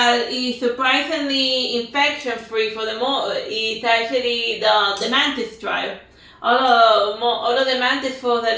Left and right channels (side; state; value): both; identical; correlation 1.00